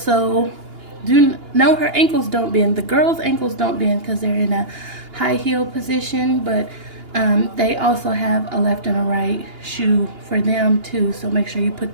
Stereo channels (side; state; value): left; late; 2.8 ms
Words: her ankles don't bend. The girls' ankles don't bend because they're in a high heel position, but they also have a left and a right shoe for them too, so make sure you